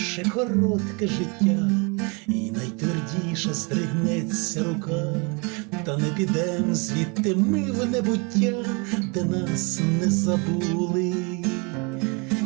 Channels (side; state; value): left; quieter; 31.5 dB